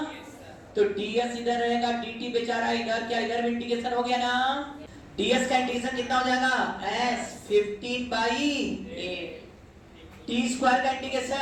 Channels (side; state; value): both; identical; correlation 1.00